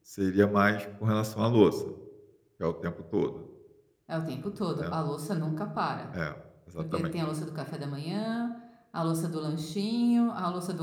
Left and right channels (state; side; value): identical; both; correlation 1.00